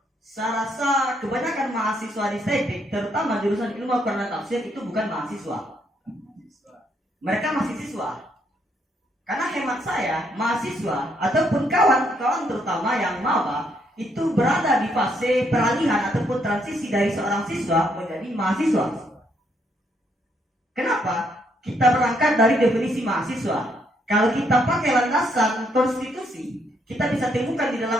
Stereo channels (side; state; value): both; normal; correlation 0.73